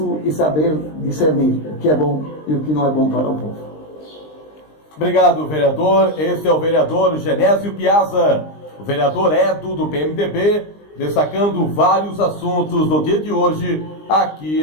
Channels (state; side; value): late; right; 20 ms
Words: e saber discernir o que é bom e o que não é bom para o povo. Obrigado, vereador. Esse é o vereador Genésio Piazza, o vereador Edo do PMDB, destacando vários assuntos do dia de hoje aqui